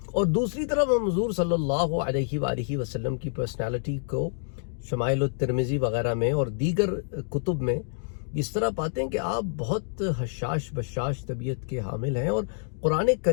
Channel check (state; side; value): silent; right; digital silence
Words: اور دوسری طرف ہم حضور صلی اللہ علیہ وآلہ وسلم کی پرسنالٹی کو شمائل الترمذی وغیرہ میں اور دیگر کتب میں اس طرح پاتے ہیں کہ آپ بہت حشاش بشاش طبیعت کے حامل ہیں، اور قرآن